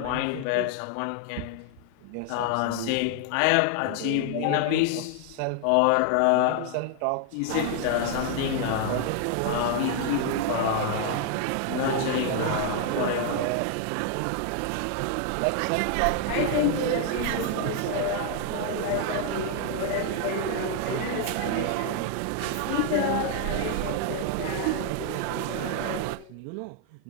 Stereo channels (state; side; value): different; both; correlation 0.00